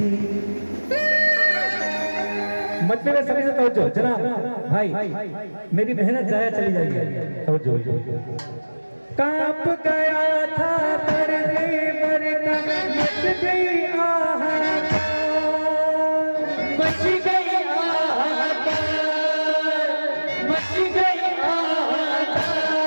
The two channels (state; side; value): inverted; both; correlation -1.00